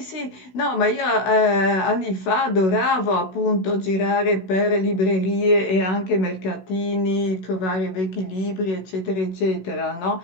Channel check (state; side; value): late; right; 16 ms